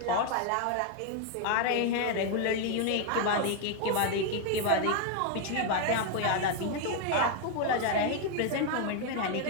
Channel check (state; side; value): different; both; correlation 0.01